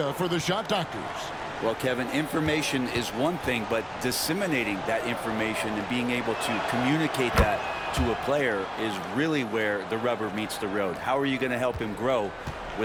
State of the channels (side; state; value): both; identical; correlation 1.00